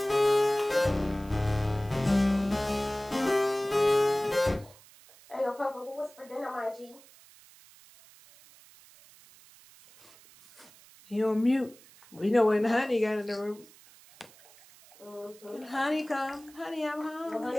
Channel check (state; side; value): noise; right; hiss, 24 dB below the sound